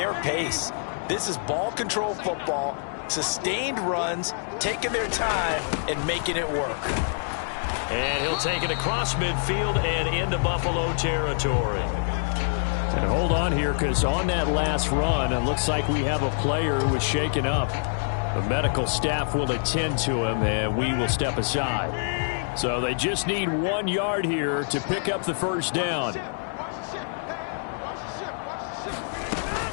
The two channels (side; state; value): right; silent; digital silence